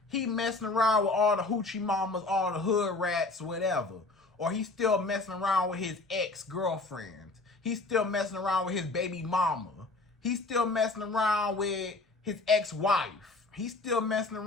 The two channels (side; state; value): right; quieter; 3.3 dB